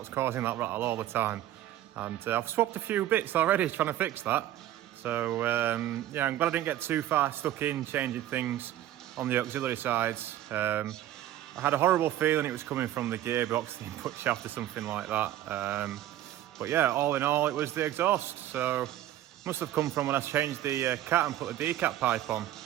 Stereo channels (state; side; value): quieter; left; 12.9 dB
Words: causing that rattle all the time. And I've swapped a few bits already trying to fix that. So yeah, I'm glad I didn't get too far stuck in changing things on the auxiliary sides. I had a horrible feeling it was coming from the gearbox, the input shaft or something like that. But yeah, all in all, it was the exhaust. So must have come from when I changed the cat and put the decap pipe on.